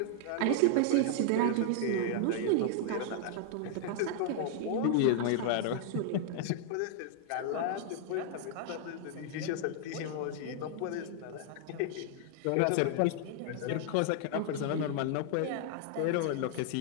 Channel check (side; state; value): both; different; correlation -0.01